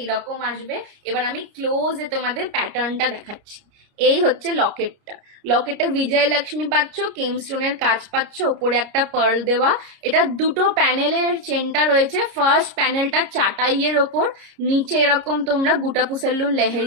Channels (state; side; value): late; left; 30 ms